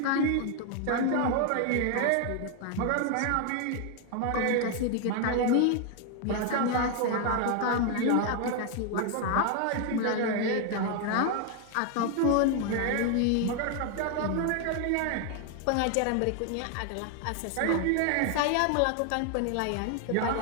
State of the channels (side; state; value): both; different; correlation 0.01